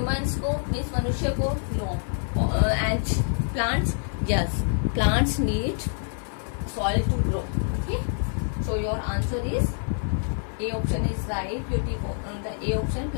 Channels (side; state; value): right; silent; 60 dB below the other